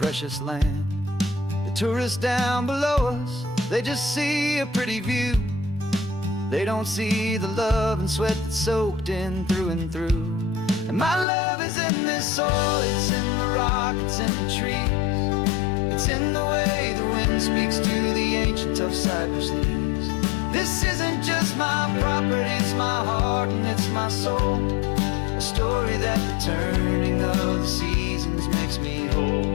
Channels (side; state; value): right; drops out; at 11.2 s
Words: land. The tourists down below us, they just see a pretty view. They don't see the love and sweat that's soaked in through and through. And my love is in this soil, it's in the rock, it's in the trees. It's in the way the wind speaks to the ancient tough cypress knees. This isn't just my property, it's my heart and it's my soul. A story that the turning of the seasons makes me whole.